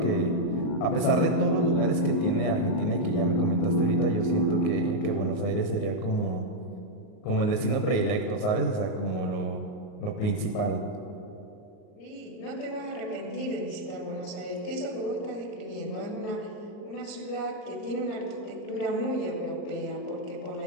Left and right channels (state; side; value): late; right; 38 ms